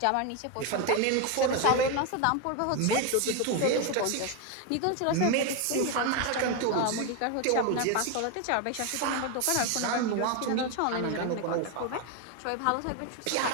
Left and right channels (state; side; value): different; both; correlation 0.02